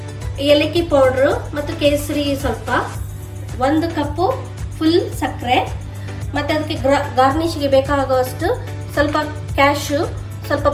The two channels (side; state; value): both; identical; correlation 1.00